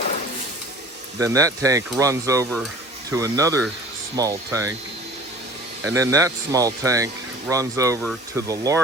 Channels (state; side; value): normal; both; correlation 0.45